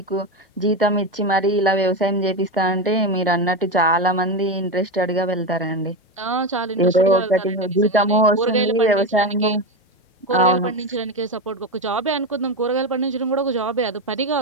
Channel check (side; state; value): both; normal; correlation 0.15